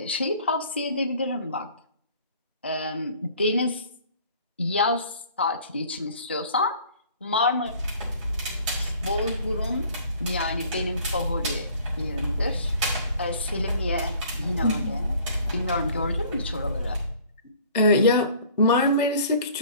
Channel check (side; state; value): both; inverted; correlation -0.52